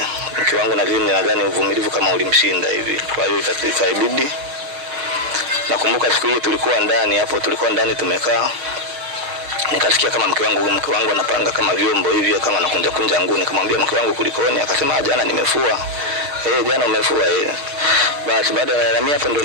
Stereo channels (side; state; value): left; late; 6.7 ms